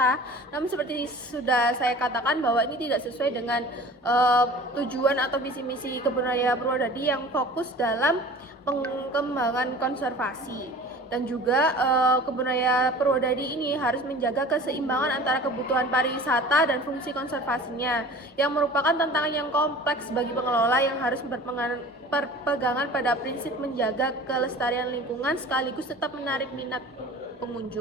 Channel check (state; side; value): normal; both; correlation 0.42